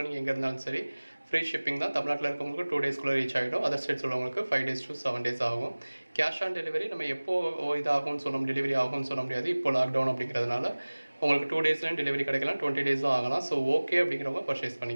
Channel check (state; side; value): inverted; both; correlation -1.00